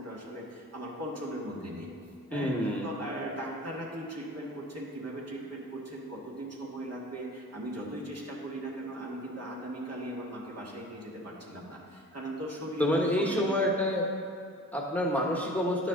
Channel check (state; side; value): normal; both; correlation 0.43